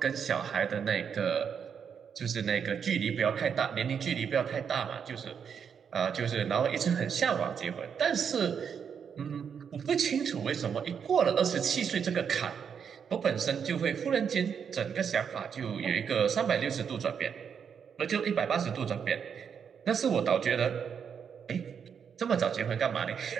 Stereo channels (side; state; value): left; quieter; 7.2 dB